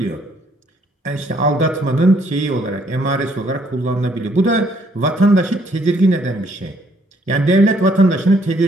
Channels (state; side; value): normal; both; correlation 0.66